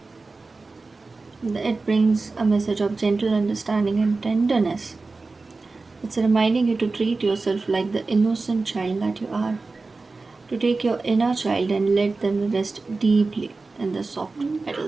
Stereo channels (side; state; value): left; quieter; 3.7 dB